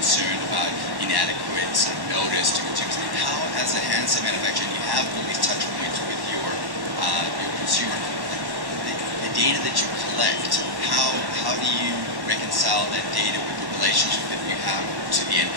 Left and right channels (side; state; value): left; late; 1.1 ms